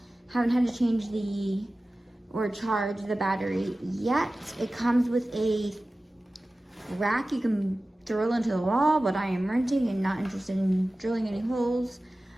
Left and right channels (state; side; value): normal; both; correlation 0.96